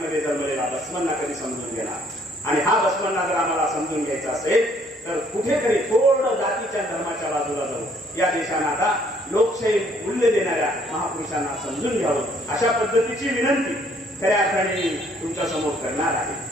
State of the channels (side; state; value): both; normal; correlation 0.63